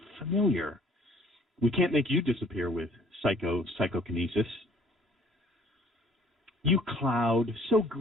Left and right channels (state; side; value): normal; both; correlation 0.57